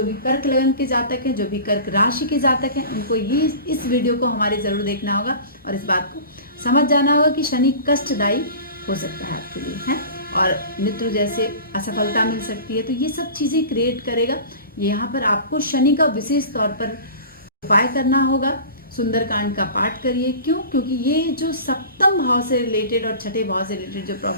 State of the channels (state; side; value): inverted; both; correlation -0.37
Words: भी कर्क लगन के जातक हैं, जो भी कर्क राशि के जातक हैं, उनको ये इस वीडियो को हमारे ज़रूर देखना होगा और इस बात को समझ जाना होगा कि शनि कष्टदायी हो सकता है आपके लिए, है, और मित्र जैसे असफलता मिल सकती है। तो ये सब चीज़ें क्रिएट करेगा। यहाँ पर आपको शनि का विशेष तौर पर उपाय करना होगा। सुंदरकांड का पाठ करिए। क्यों? क्योंकि ये जो सप्तम भाव से रिलेटेड और छठे भाव से रिलेटेड जो